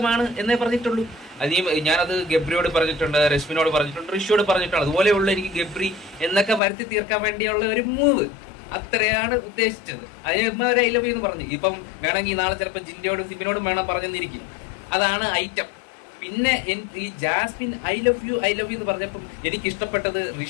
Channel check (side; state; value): right; drops out; at 6.6 s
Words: എന്നേ പറഞ്ഞിട്ടുള്ളൂ. ഞാനത് ഗബ്രിയോട് പറഞ്ഞിട്ടുണ്ട്, രശ്മിനോട് പറഞ്ഞിട്ടുണ്ട്, ഋഷിയോട് പറഞ്ഞിട്ടുണ്ട്. അതുപോലെയുള്ള എനിക്ക് ഗബ്രി എന്നൊക്കെ വരുത്തി തീർക്കാൻ വേണ്ടിയുള്ള ഒരു മൂവ്, അത്രയാണ് ഉദ്ദേശിച്ചത്. അതിന് ഒരു ഐ ലവ് യു എന്ന് പറഞ്ഞു. ഇപ്പം വേണമെങ്കിൽ നാളെ ചിലപ്പോൾ ജിൻഡയോടും സിബിനോടും വേണം പറഞ്ഞെന്നിരിക്കും. അതാണ് ഐറ്റം. പിന്നെ ഈ ജാസ്മിൻ ഐ ലവ് യു എന്ന് പറഞ്ഞപ്പം എനിക്ക് ഇഷ്ടപ്പെട്ടത്